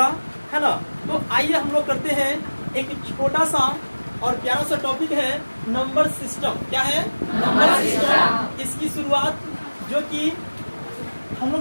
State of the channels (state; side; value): inverted; both; correlation -1.00